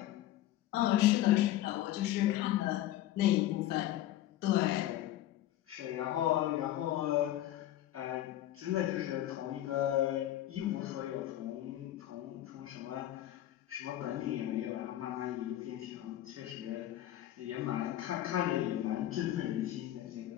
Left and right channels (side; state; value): right; quieter; 13.6 dB